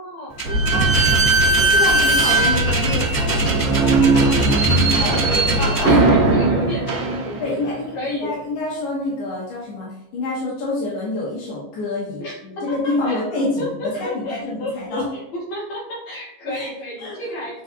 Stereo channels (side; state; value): right; late; 15 ms